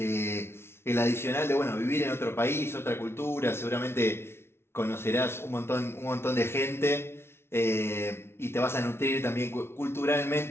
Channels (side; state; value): right; late; 0.12 ms